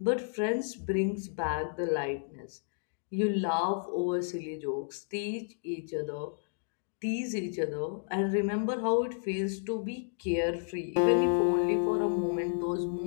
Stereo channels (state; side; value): silent; right; digital silence